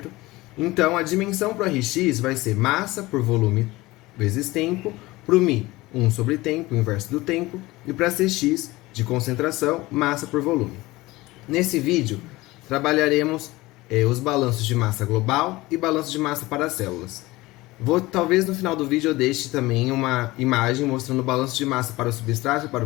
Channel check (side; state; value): right; quieter; 19.9 dB